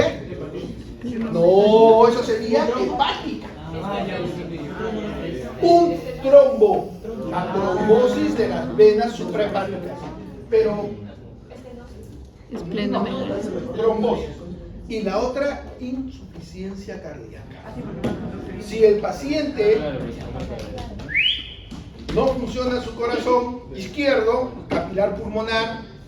No, eso sería hepática. Un trombo, la trombosis de las venas suprahepáticas. Pero trombosis. Y la otra, insuficiencia cardíaca. Si el paciente no funciona su corazón izquierdo, capilar pulmonar,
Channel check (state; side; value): identical; both; correlation 1.00